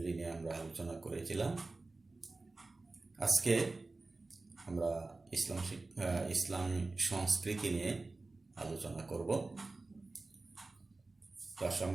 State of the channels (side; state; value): left; quieter; 3.4 dB